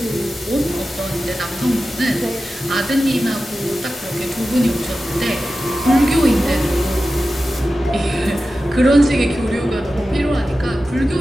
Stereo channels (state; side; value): normal; both; correlation 0.93